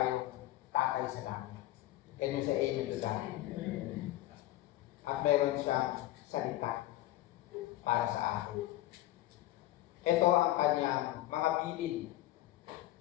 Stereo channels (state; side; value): quieter; right; 15.8 dB